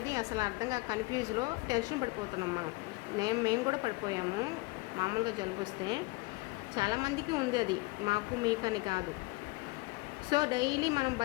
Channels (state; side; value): quieter; right; 24.0 dB